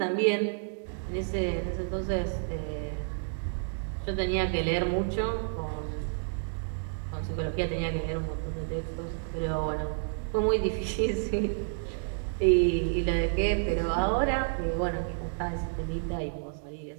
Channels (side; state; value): left; silent; digital silence